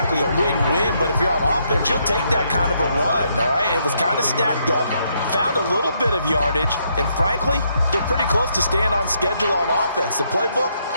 a win-win, but if you're on offense, you'll take that kind of a run, all right? It was kind of stacked up, found a little bit of yardage, and frankly, they're pretty close to staying on schedule on offense. The playbook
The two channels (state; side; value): inverted; both; correlation -0.75